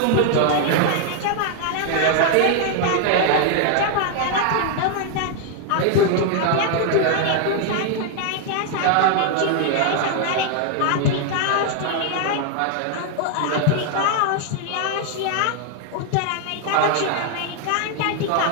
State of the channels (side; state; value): both; different; correlation 0.00